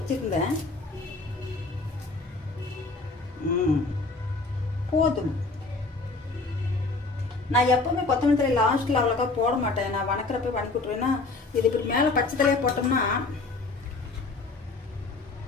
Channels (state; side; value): quieter; right; 3.6 dB